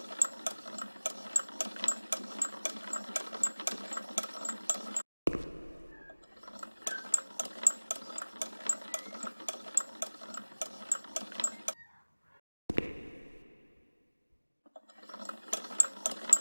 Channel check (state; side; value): inverted; both; correlation -1.00